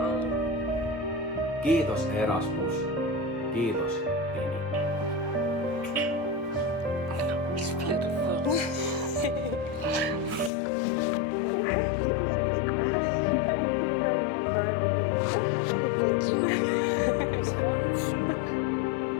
all. Kiitos Erasmus. Kiitos Tínυ. It's beautiful. Thank you. It's wonderful.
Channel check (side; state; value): right; drops out; at 10.5 s